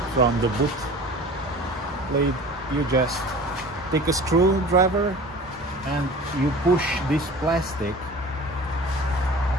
from the boot plate. You just take a screwdriver and you push this plastic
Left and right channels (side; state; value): both; normal; correlation 0.41